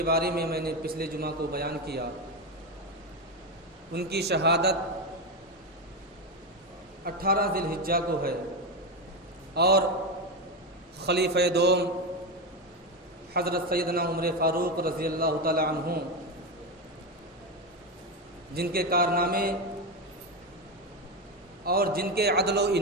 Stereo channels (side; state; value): both; normal; correlation 0.13